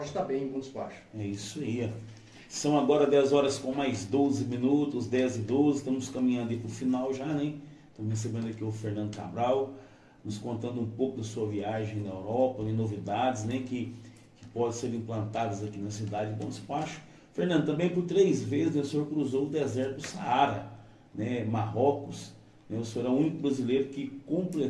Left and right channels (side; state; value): both; identical; correlation 1.00